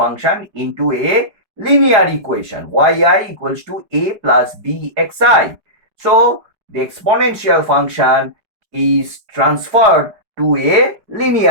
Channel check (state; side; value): late; left; 4.7 ms